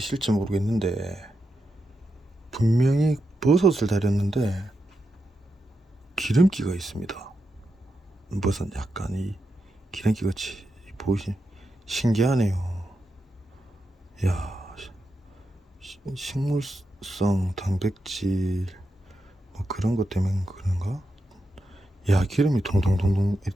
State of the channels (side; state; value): both; normal; correlation 0.87